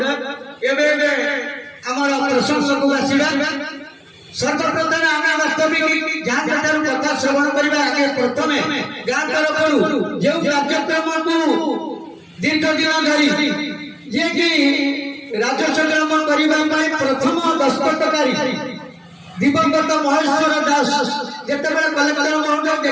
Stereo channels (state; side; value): identical; both; correlation 1.00